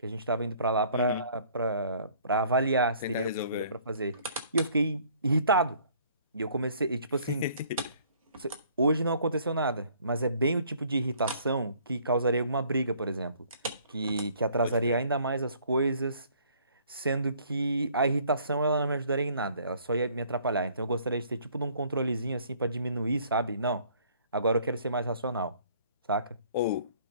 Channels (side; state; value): both; inverted; correlation -0.59